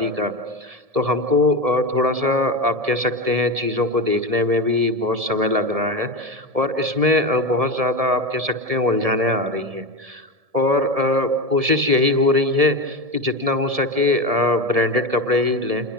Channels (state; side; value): late; left; 1.7 ms